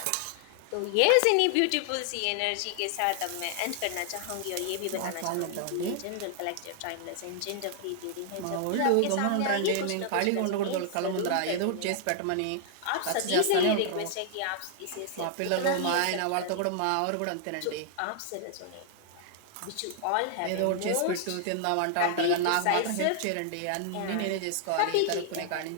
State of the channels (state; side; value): different; both; correlation 0.00